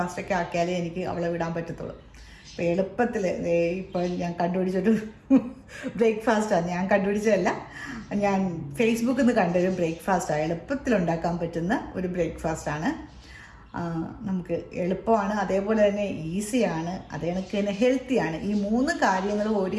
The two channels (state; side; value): identical; both; correlation 1.00